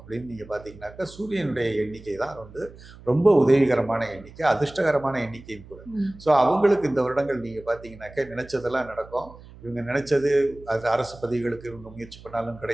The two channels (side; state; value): right; noise; hum, 20 dB below the sound